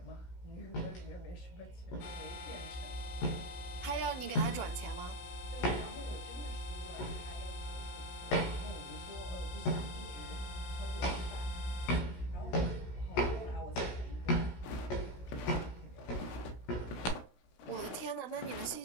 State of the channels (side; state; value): right; late; 16 ms